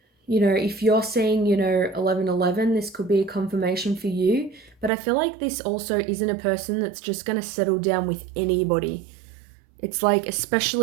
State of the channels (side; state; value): left; drops out; at 4.9 s